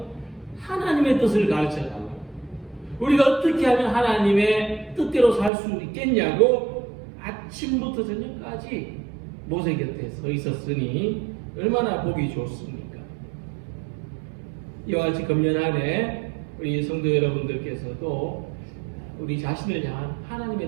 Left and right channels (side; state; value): left; drops out; at 5.5 s